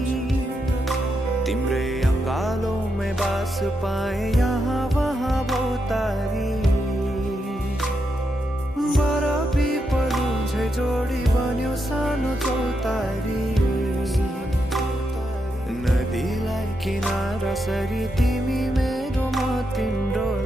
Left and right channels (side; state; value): both; normal; correlation 0.83